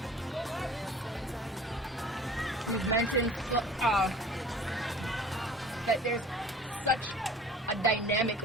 We've mentioned that there's such a dynamic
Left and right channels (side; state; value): both; normal; correlation 0.45